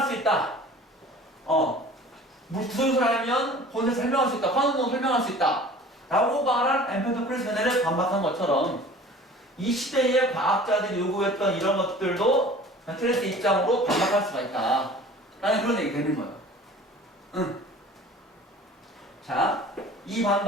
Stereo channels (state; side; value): normal; both; correlation 0.45